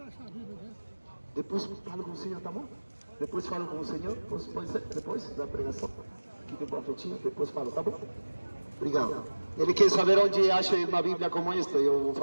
depois falo com o Senhor, tá bom? Depois falo com o Senhor, pode ser? Depois da pregação, aqui tem profetinha, depois falo, tá bom? Obrigado. Ele quer saber onde acha uma Bíblia como esta, eu vou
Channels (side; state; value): both; inverted; correlation -1.00